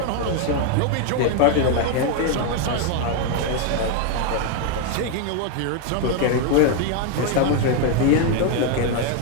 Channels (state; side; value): different; both; correlation 0.01